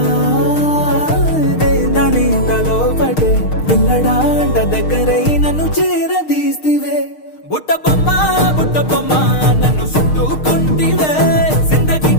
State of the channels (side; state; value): right; late; 6.5 ms